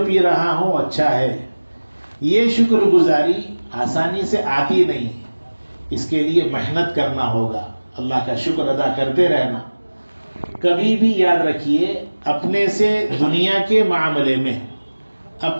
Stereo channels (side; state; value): both; inverted; correlation -1.00